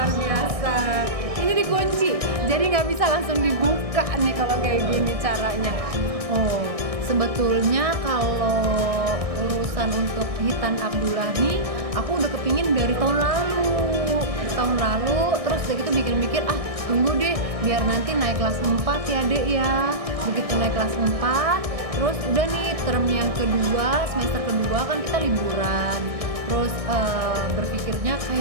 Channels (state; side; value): late; left; 1.6 ms